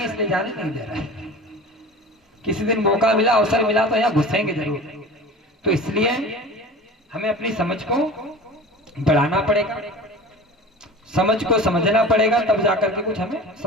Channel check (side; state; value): both; normal; correlation 0.37